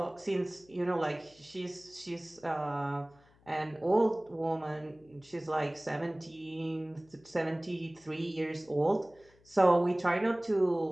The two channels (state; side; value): noise; left; hum, 30 dB below the sound